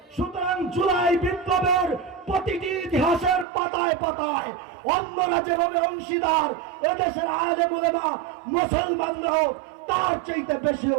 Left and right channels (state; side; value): drops out; left; at 3.5 s